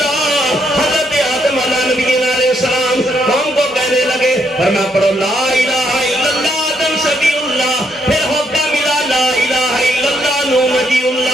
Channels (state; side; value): normal; both; correlation 0.74